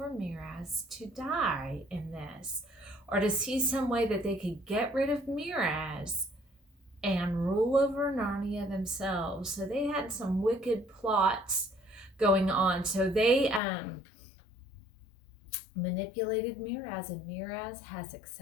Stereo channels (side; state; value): right; drops out; at 13.6 s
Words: Miraz to die in this, or to see some way that they could get rid of Miraz and rule over Narnia themselves. So they had some wicked plots going on. So they manipulated Miraz, and Miraz has